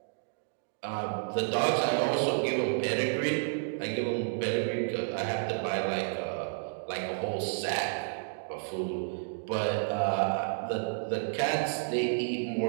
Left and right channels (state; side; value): silent; left; digital silence